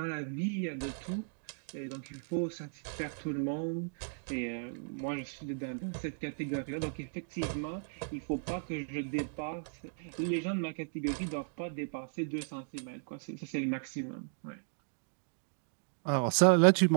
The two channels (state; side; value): silent; left; digital silence